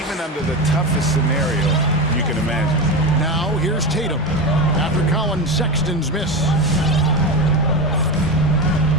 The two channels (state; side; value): normal; both; correlation 0.20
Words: even under the toughest scenario you can imagine. Now here's Tatum after Colin Sexton's miss.